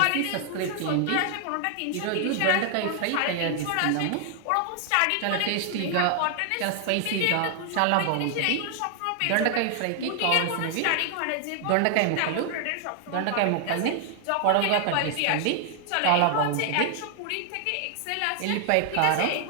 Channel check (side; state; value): both; different; correlation 0.00